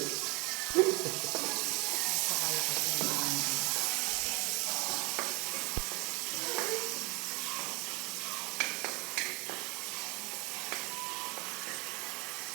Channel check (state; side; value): quieter; left; 27.1 dB